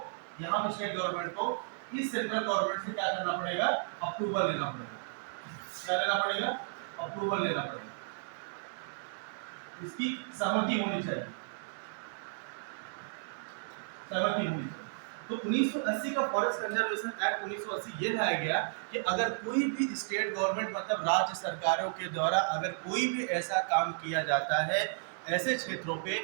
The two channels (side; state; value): left; silent; digital silence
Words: यहाँ पे स्टेट गवर्नमेंट को इस सेंट्रल गवर्नमेंट से क्या करना पड़ेगा? अप्रूवल लेना पड़ेगा। क्या लेना पड़ेगा? अप्रूवल लेना पड़ेगा, इसकी सहमति होनी चाहिए, सहमति होनी चाहिए। तो 1980 का फॉरेस्ट कंजर्वेशन एक्ट 1980 ये लाया गया कि अगर कोई भी स्टेट गवर्नमेंट, मतलब राज्य सरकारों के द्वारा अगर कोई भी ऐसा काम किया जाता है ऐसे क्षेत्रों पे